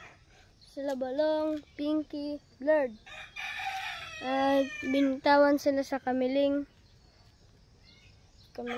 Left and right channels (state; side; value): identical; both; correlation 1.00